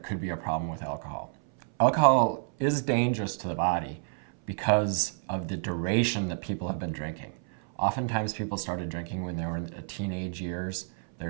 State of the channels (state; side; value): silent; left; 58 dB below the other